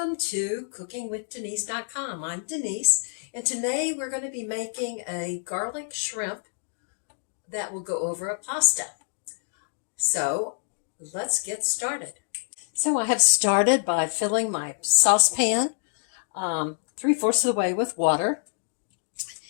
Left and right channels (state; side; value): silent; right; digital silence